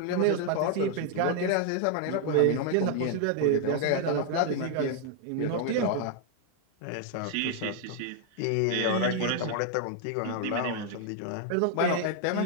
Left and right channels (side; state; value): both; different; correlation 0.00